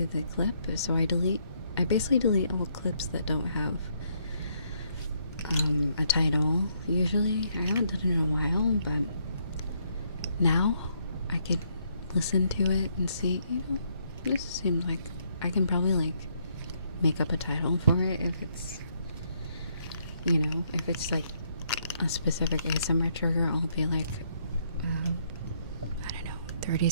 the clip, so I basically delete all clips that don't have a title. Usually, I haven't done it in a while, but now I could listen to it and see, you know, this seems like I can probably like make up a title for it if it's, you know, if it's like a specific ASMR trigger. I'll be like, I don't know, 30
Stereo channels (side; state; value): both; inverted; correlation -0.72